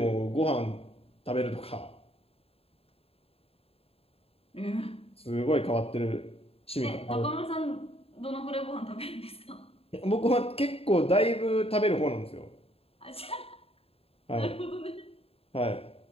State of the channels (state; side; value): late; right; 0.28 ms